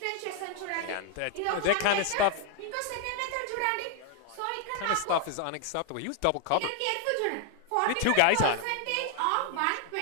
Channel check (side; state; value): both; different; correlation 0.01